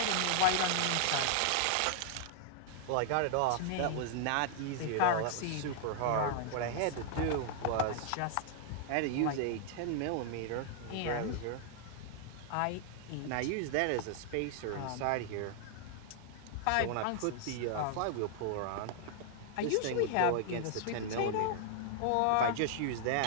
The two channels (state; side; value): different; both; correlation -0.01